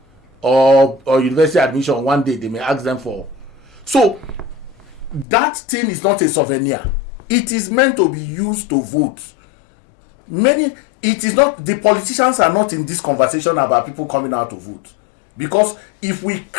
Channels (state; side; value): drops out; right; at 5.2 s